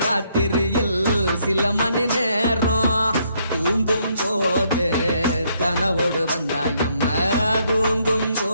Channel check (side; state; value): both; inverted; correlation -0.71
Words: சில மணி நேரம் தூங்கும் போது கனவோடு வந்தாயம்மா தூங்கும்